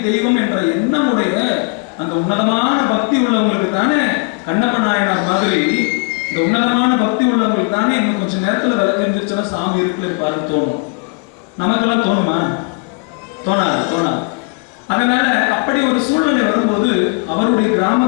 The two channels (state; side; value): quieter; right; 33.5 dB